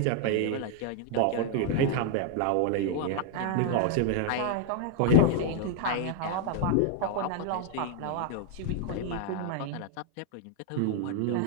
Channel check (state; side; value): different; both; correlation 0.00